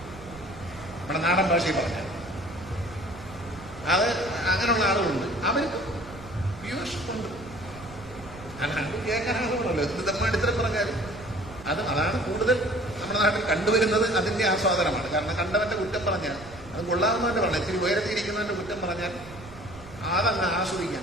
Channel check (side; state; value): right; noise; rumble, 17 dB below the sound